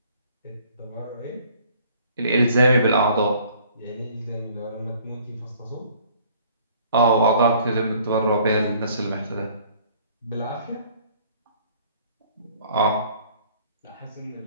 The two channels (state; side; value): inverted; both; correlation -0.57